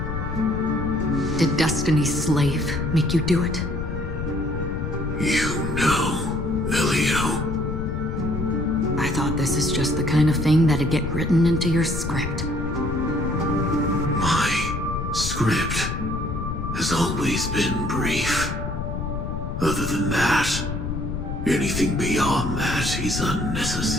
Did Destiny's slave make you do it? You know, Elio. I thought this is just the kind of thing that'd get written into your script. My script has always been brief. Other than that, anything beyond that is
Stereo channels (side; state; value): left; noise; rumble, 4 dB below the sound